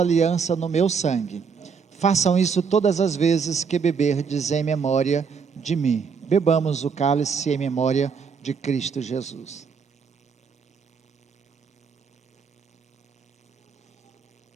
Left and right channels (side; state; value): left; quieter; 5.9 dB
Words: no meu sangue. Façam isso todas as vezes que beberdes em memória de mim. Bebamos o cálice em memória de Cristo Jesus.